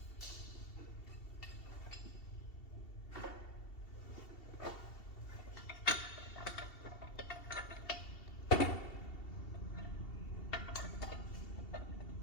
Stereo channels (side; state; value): right; late; 2.7 ms